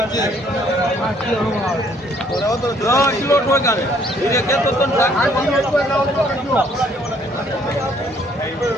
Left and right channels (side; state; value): both; normal; correlation 0.63